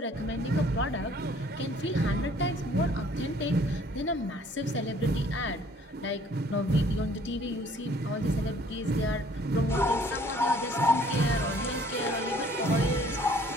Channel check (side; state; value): both; normal; correlation 0.57